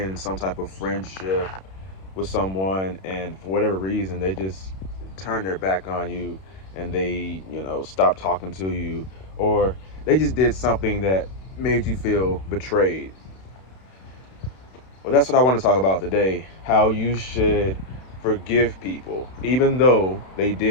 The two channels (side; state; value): right; late; 32 ms